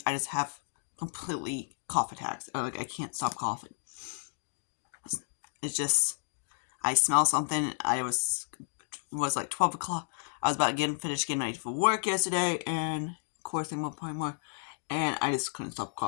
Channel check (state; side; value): silent; right; digital silence